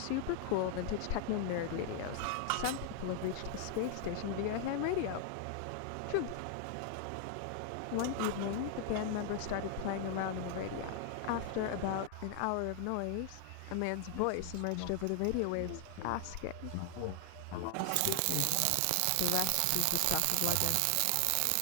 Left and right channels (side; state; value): both; different; correlation 0.00